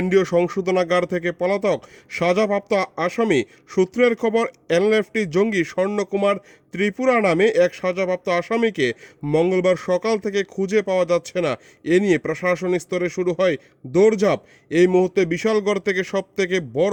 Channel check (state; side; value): identical; both; correlation 1.00